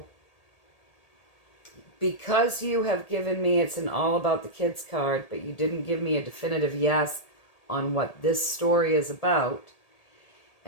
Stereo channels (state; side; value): late; right; 1.8 ms